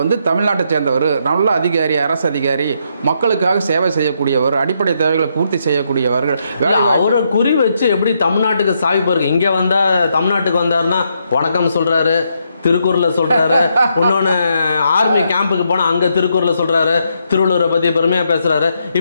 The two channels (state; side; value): inverted; both; correlation -0.77